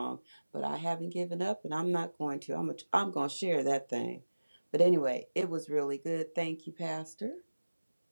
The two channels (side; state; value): both; inverted; correlation -1.00